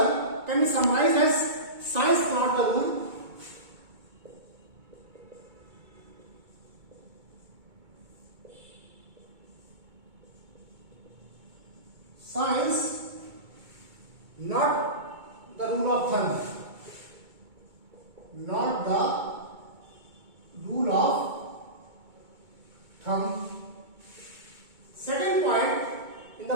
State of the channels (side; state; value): left; late; 2.2 ms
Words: can be summarized as science not the rule, science not the rule of thumb, not the rule of thumb. Second point, in the